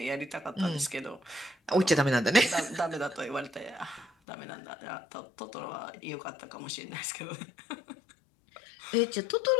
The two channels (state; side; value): drops out; right; at 4.1 s